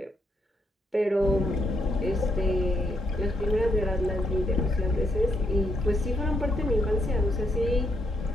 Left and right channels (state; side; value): normal; both; correlation 0.76